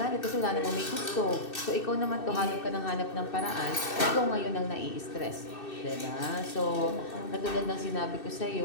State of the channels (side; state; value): right; late; 2.6 ms